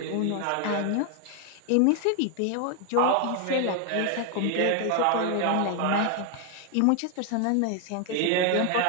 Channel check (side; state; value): both; different; correlation 0.00